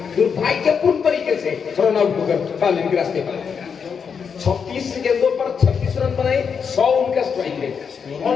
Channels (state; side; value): quieter; right; 6.5 dB